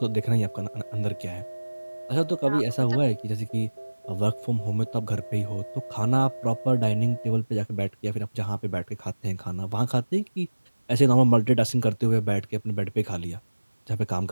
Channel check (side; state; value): both; inverted; correlation -1.00